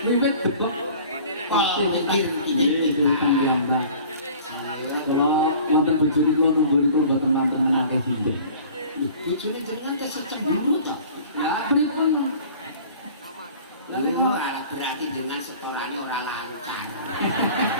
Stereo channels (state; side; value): inverted; both; correlation -0.46